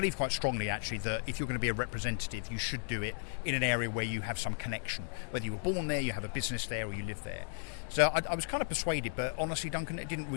quite strongly, actually, that if you're going to be a representative, you should do it in an area where you have some connection. Whether you were born there, you have a business there, or you live there. So I was kind of persuaded, but honestly, Duncan, it didn't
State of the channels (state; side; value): silent; right; digital silence